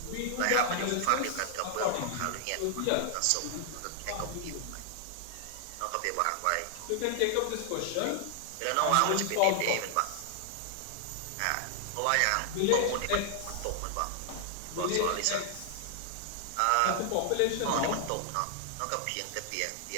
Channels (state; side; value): different; both; correlation 0.00